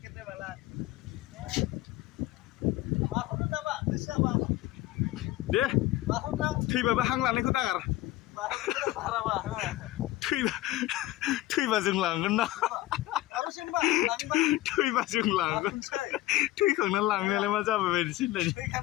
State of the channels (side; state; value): right; quieter; 16.4 dB